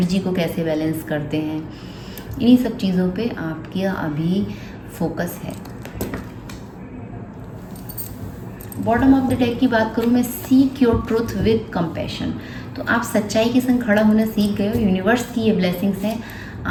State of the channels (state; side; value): identical; both; correlation 1.00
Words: को कैसे बैलेंस करते हैं, इन्हीं सब चीज़ों पे आपका अभी फोकस है। बॉटम ऑफ द डेक की बात करूँ मैं, seek your truth with compassion. तो आप सच्चाई के संग खड़ा होना सीख गए हो, यूनिवर्स की ये ब्लेसिंग्स हैं